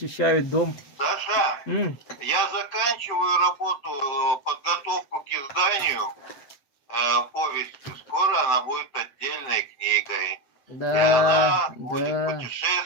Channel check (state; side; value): late; right; 7.8 ms